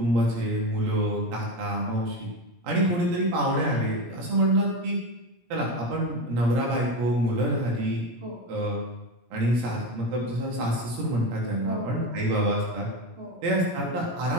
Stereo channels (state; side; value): late; left; 17 ms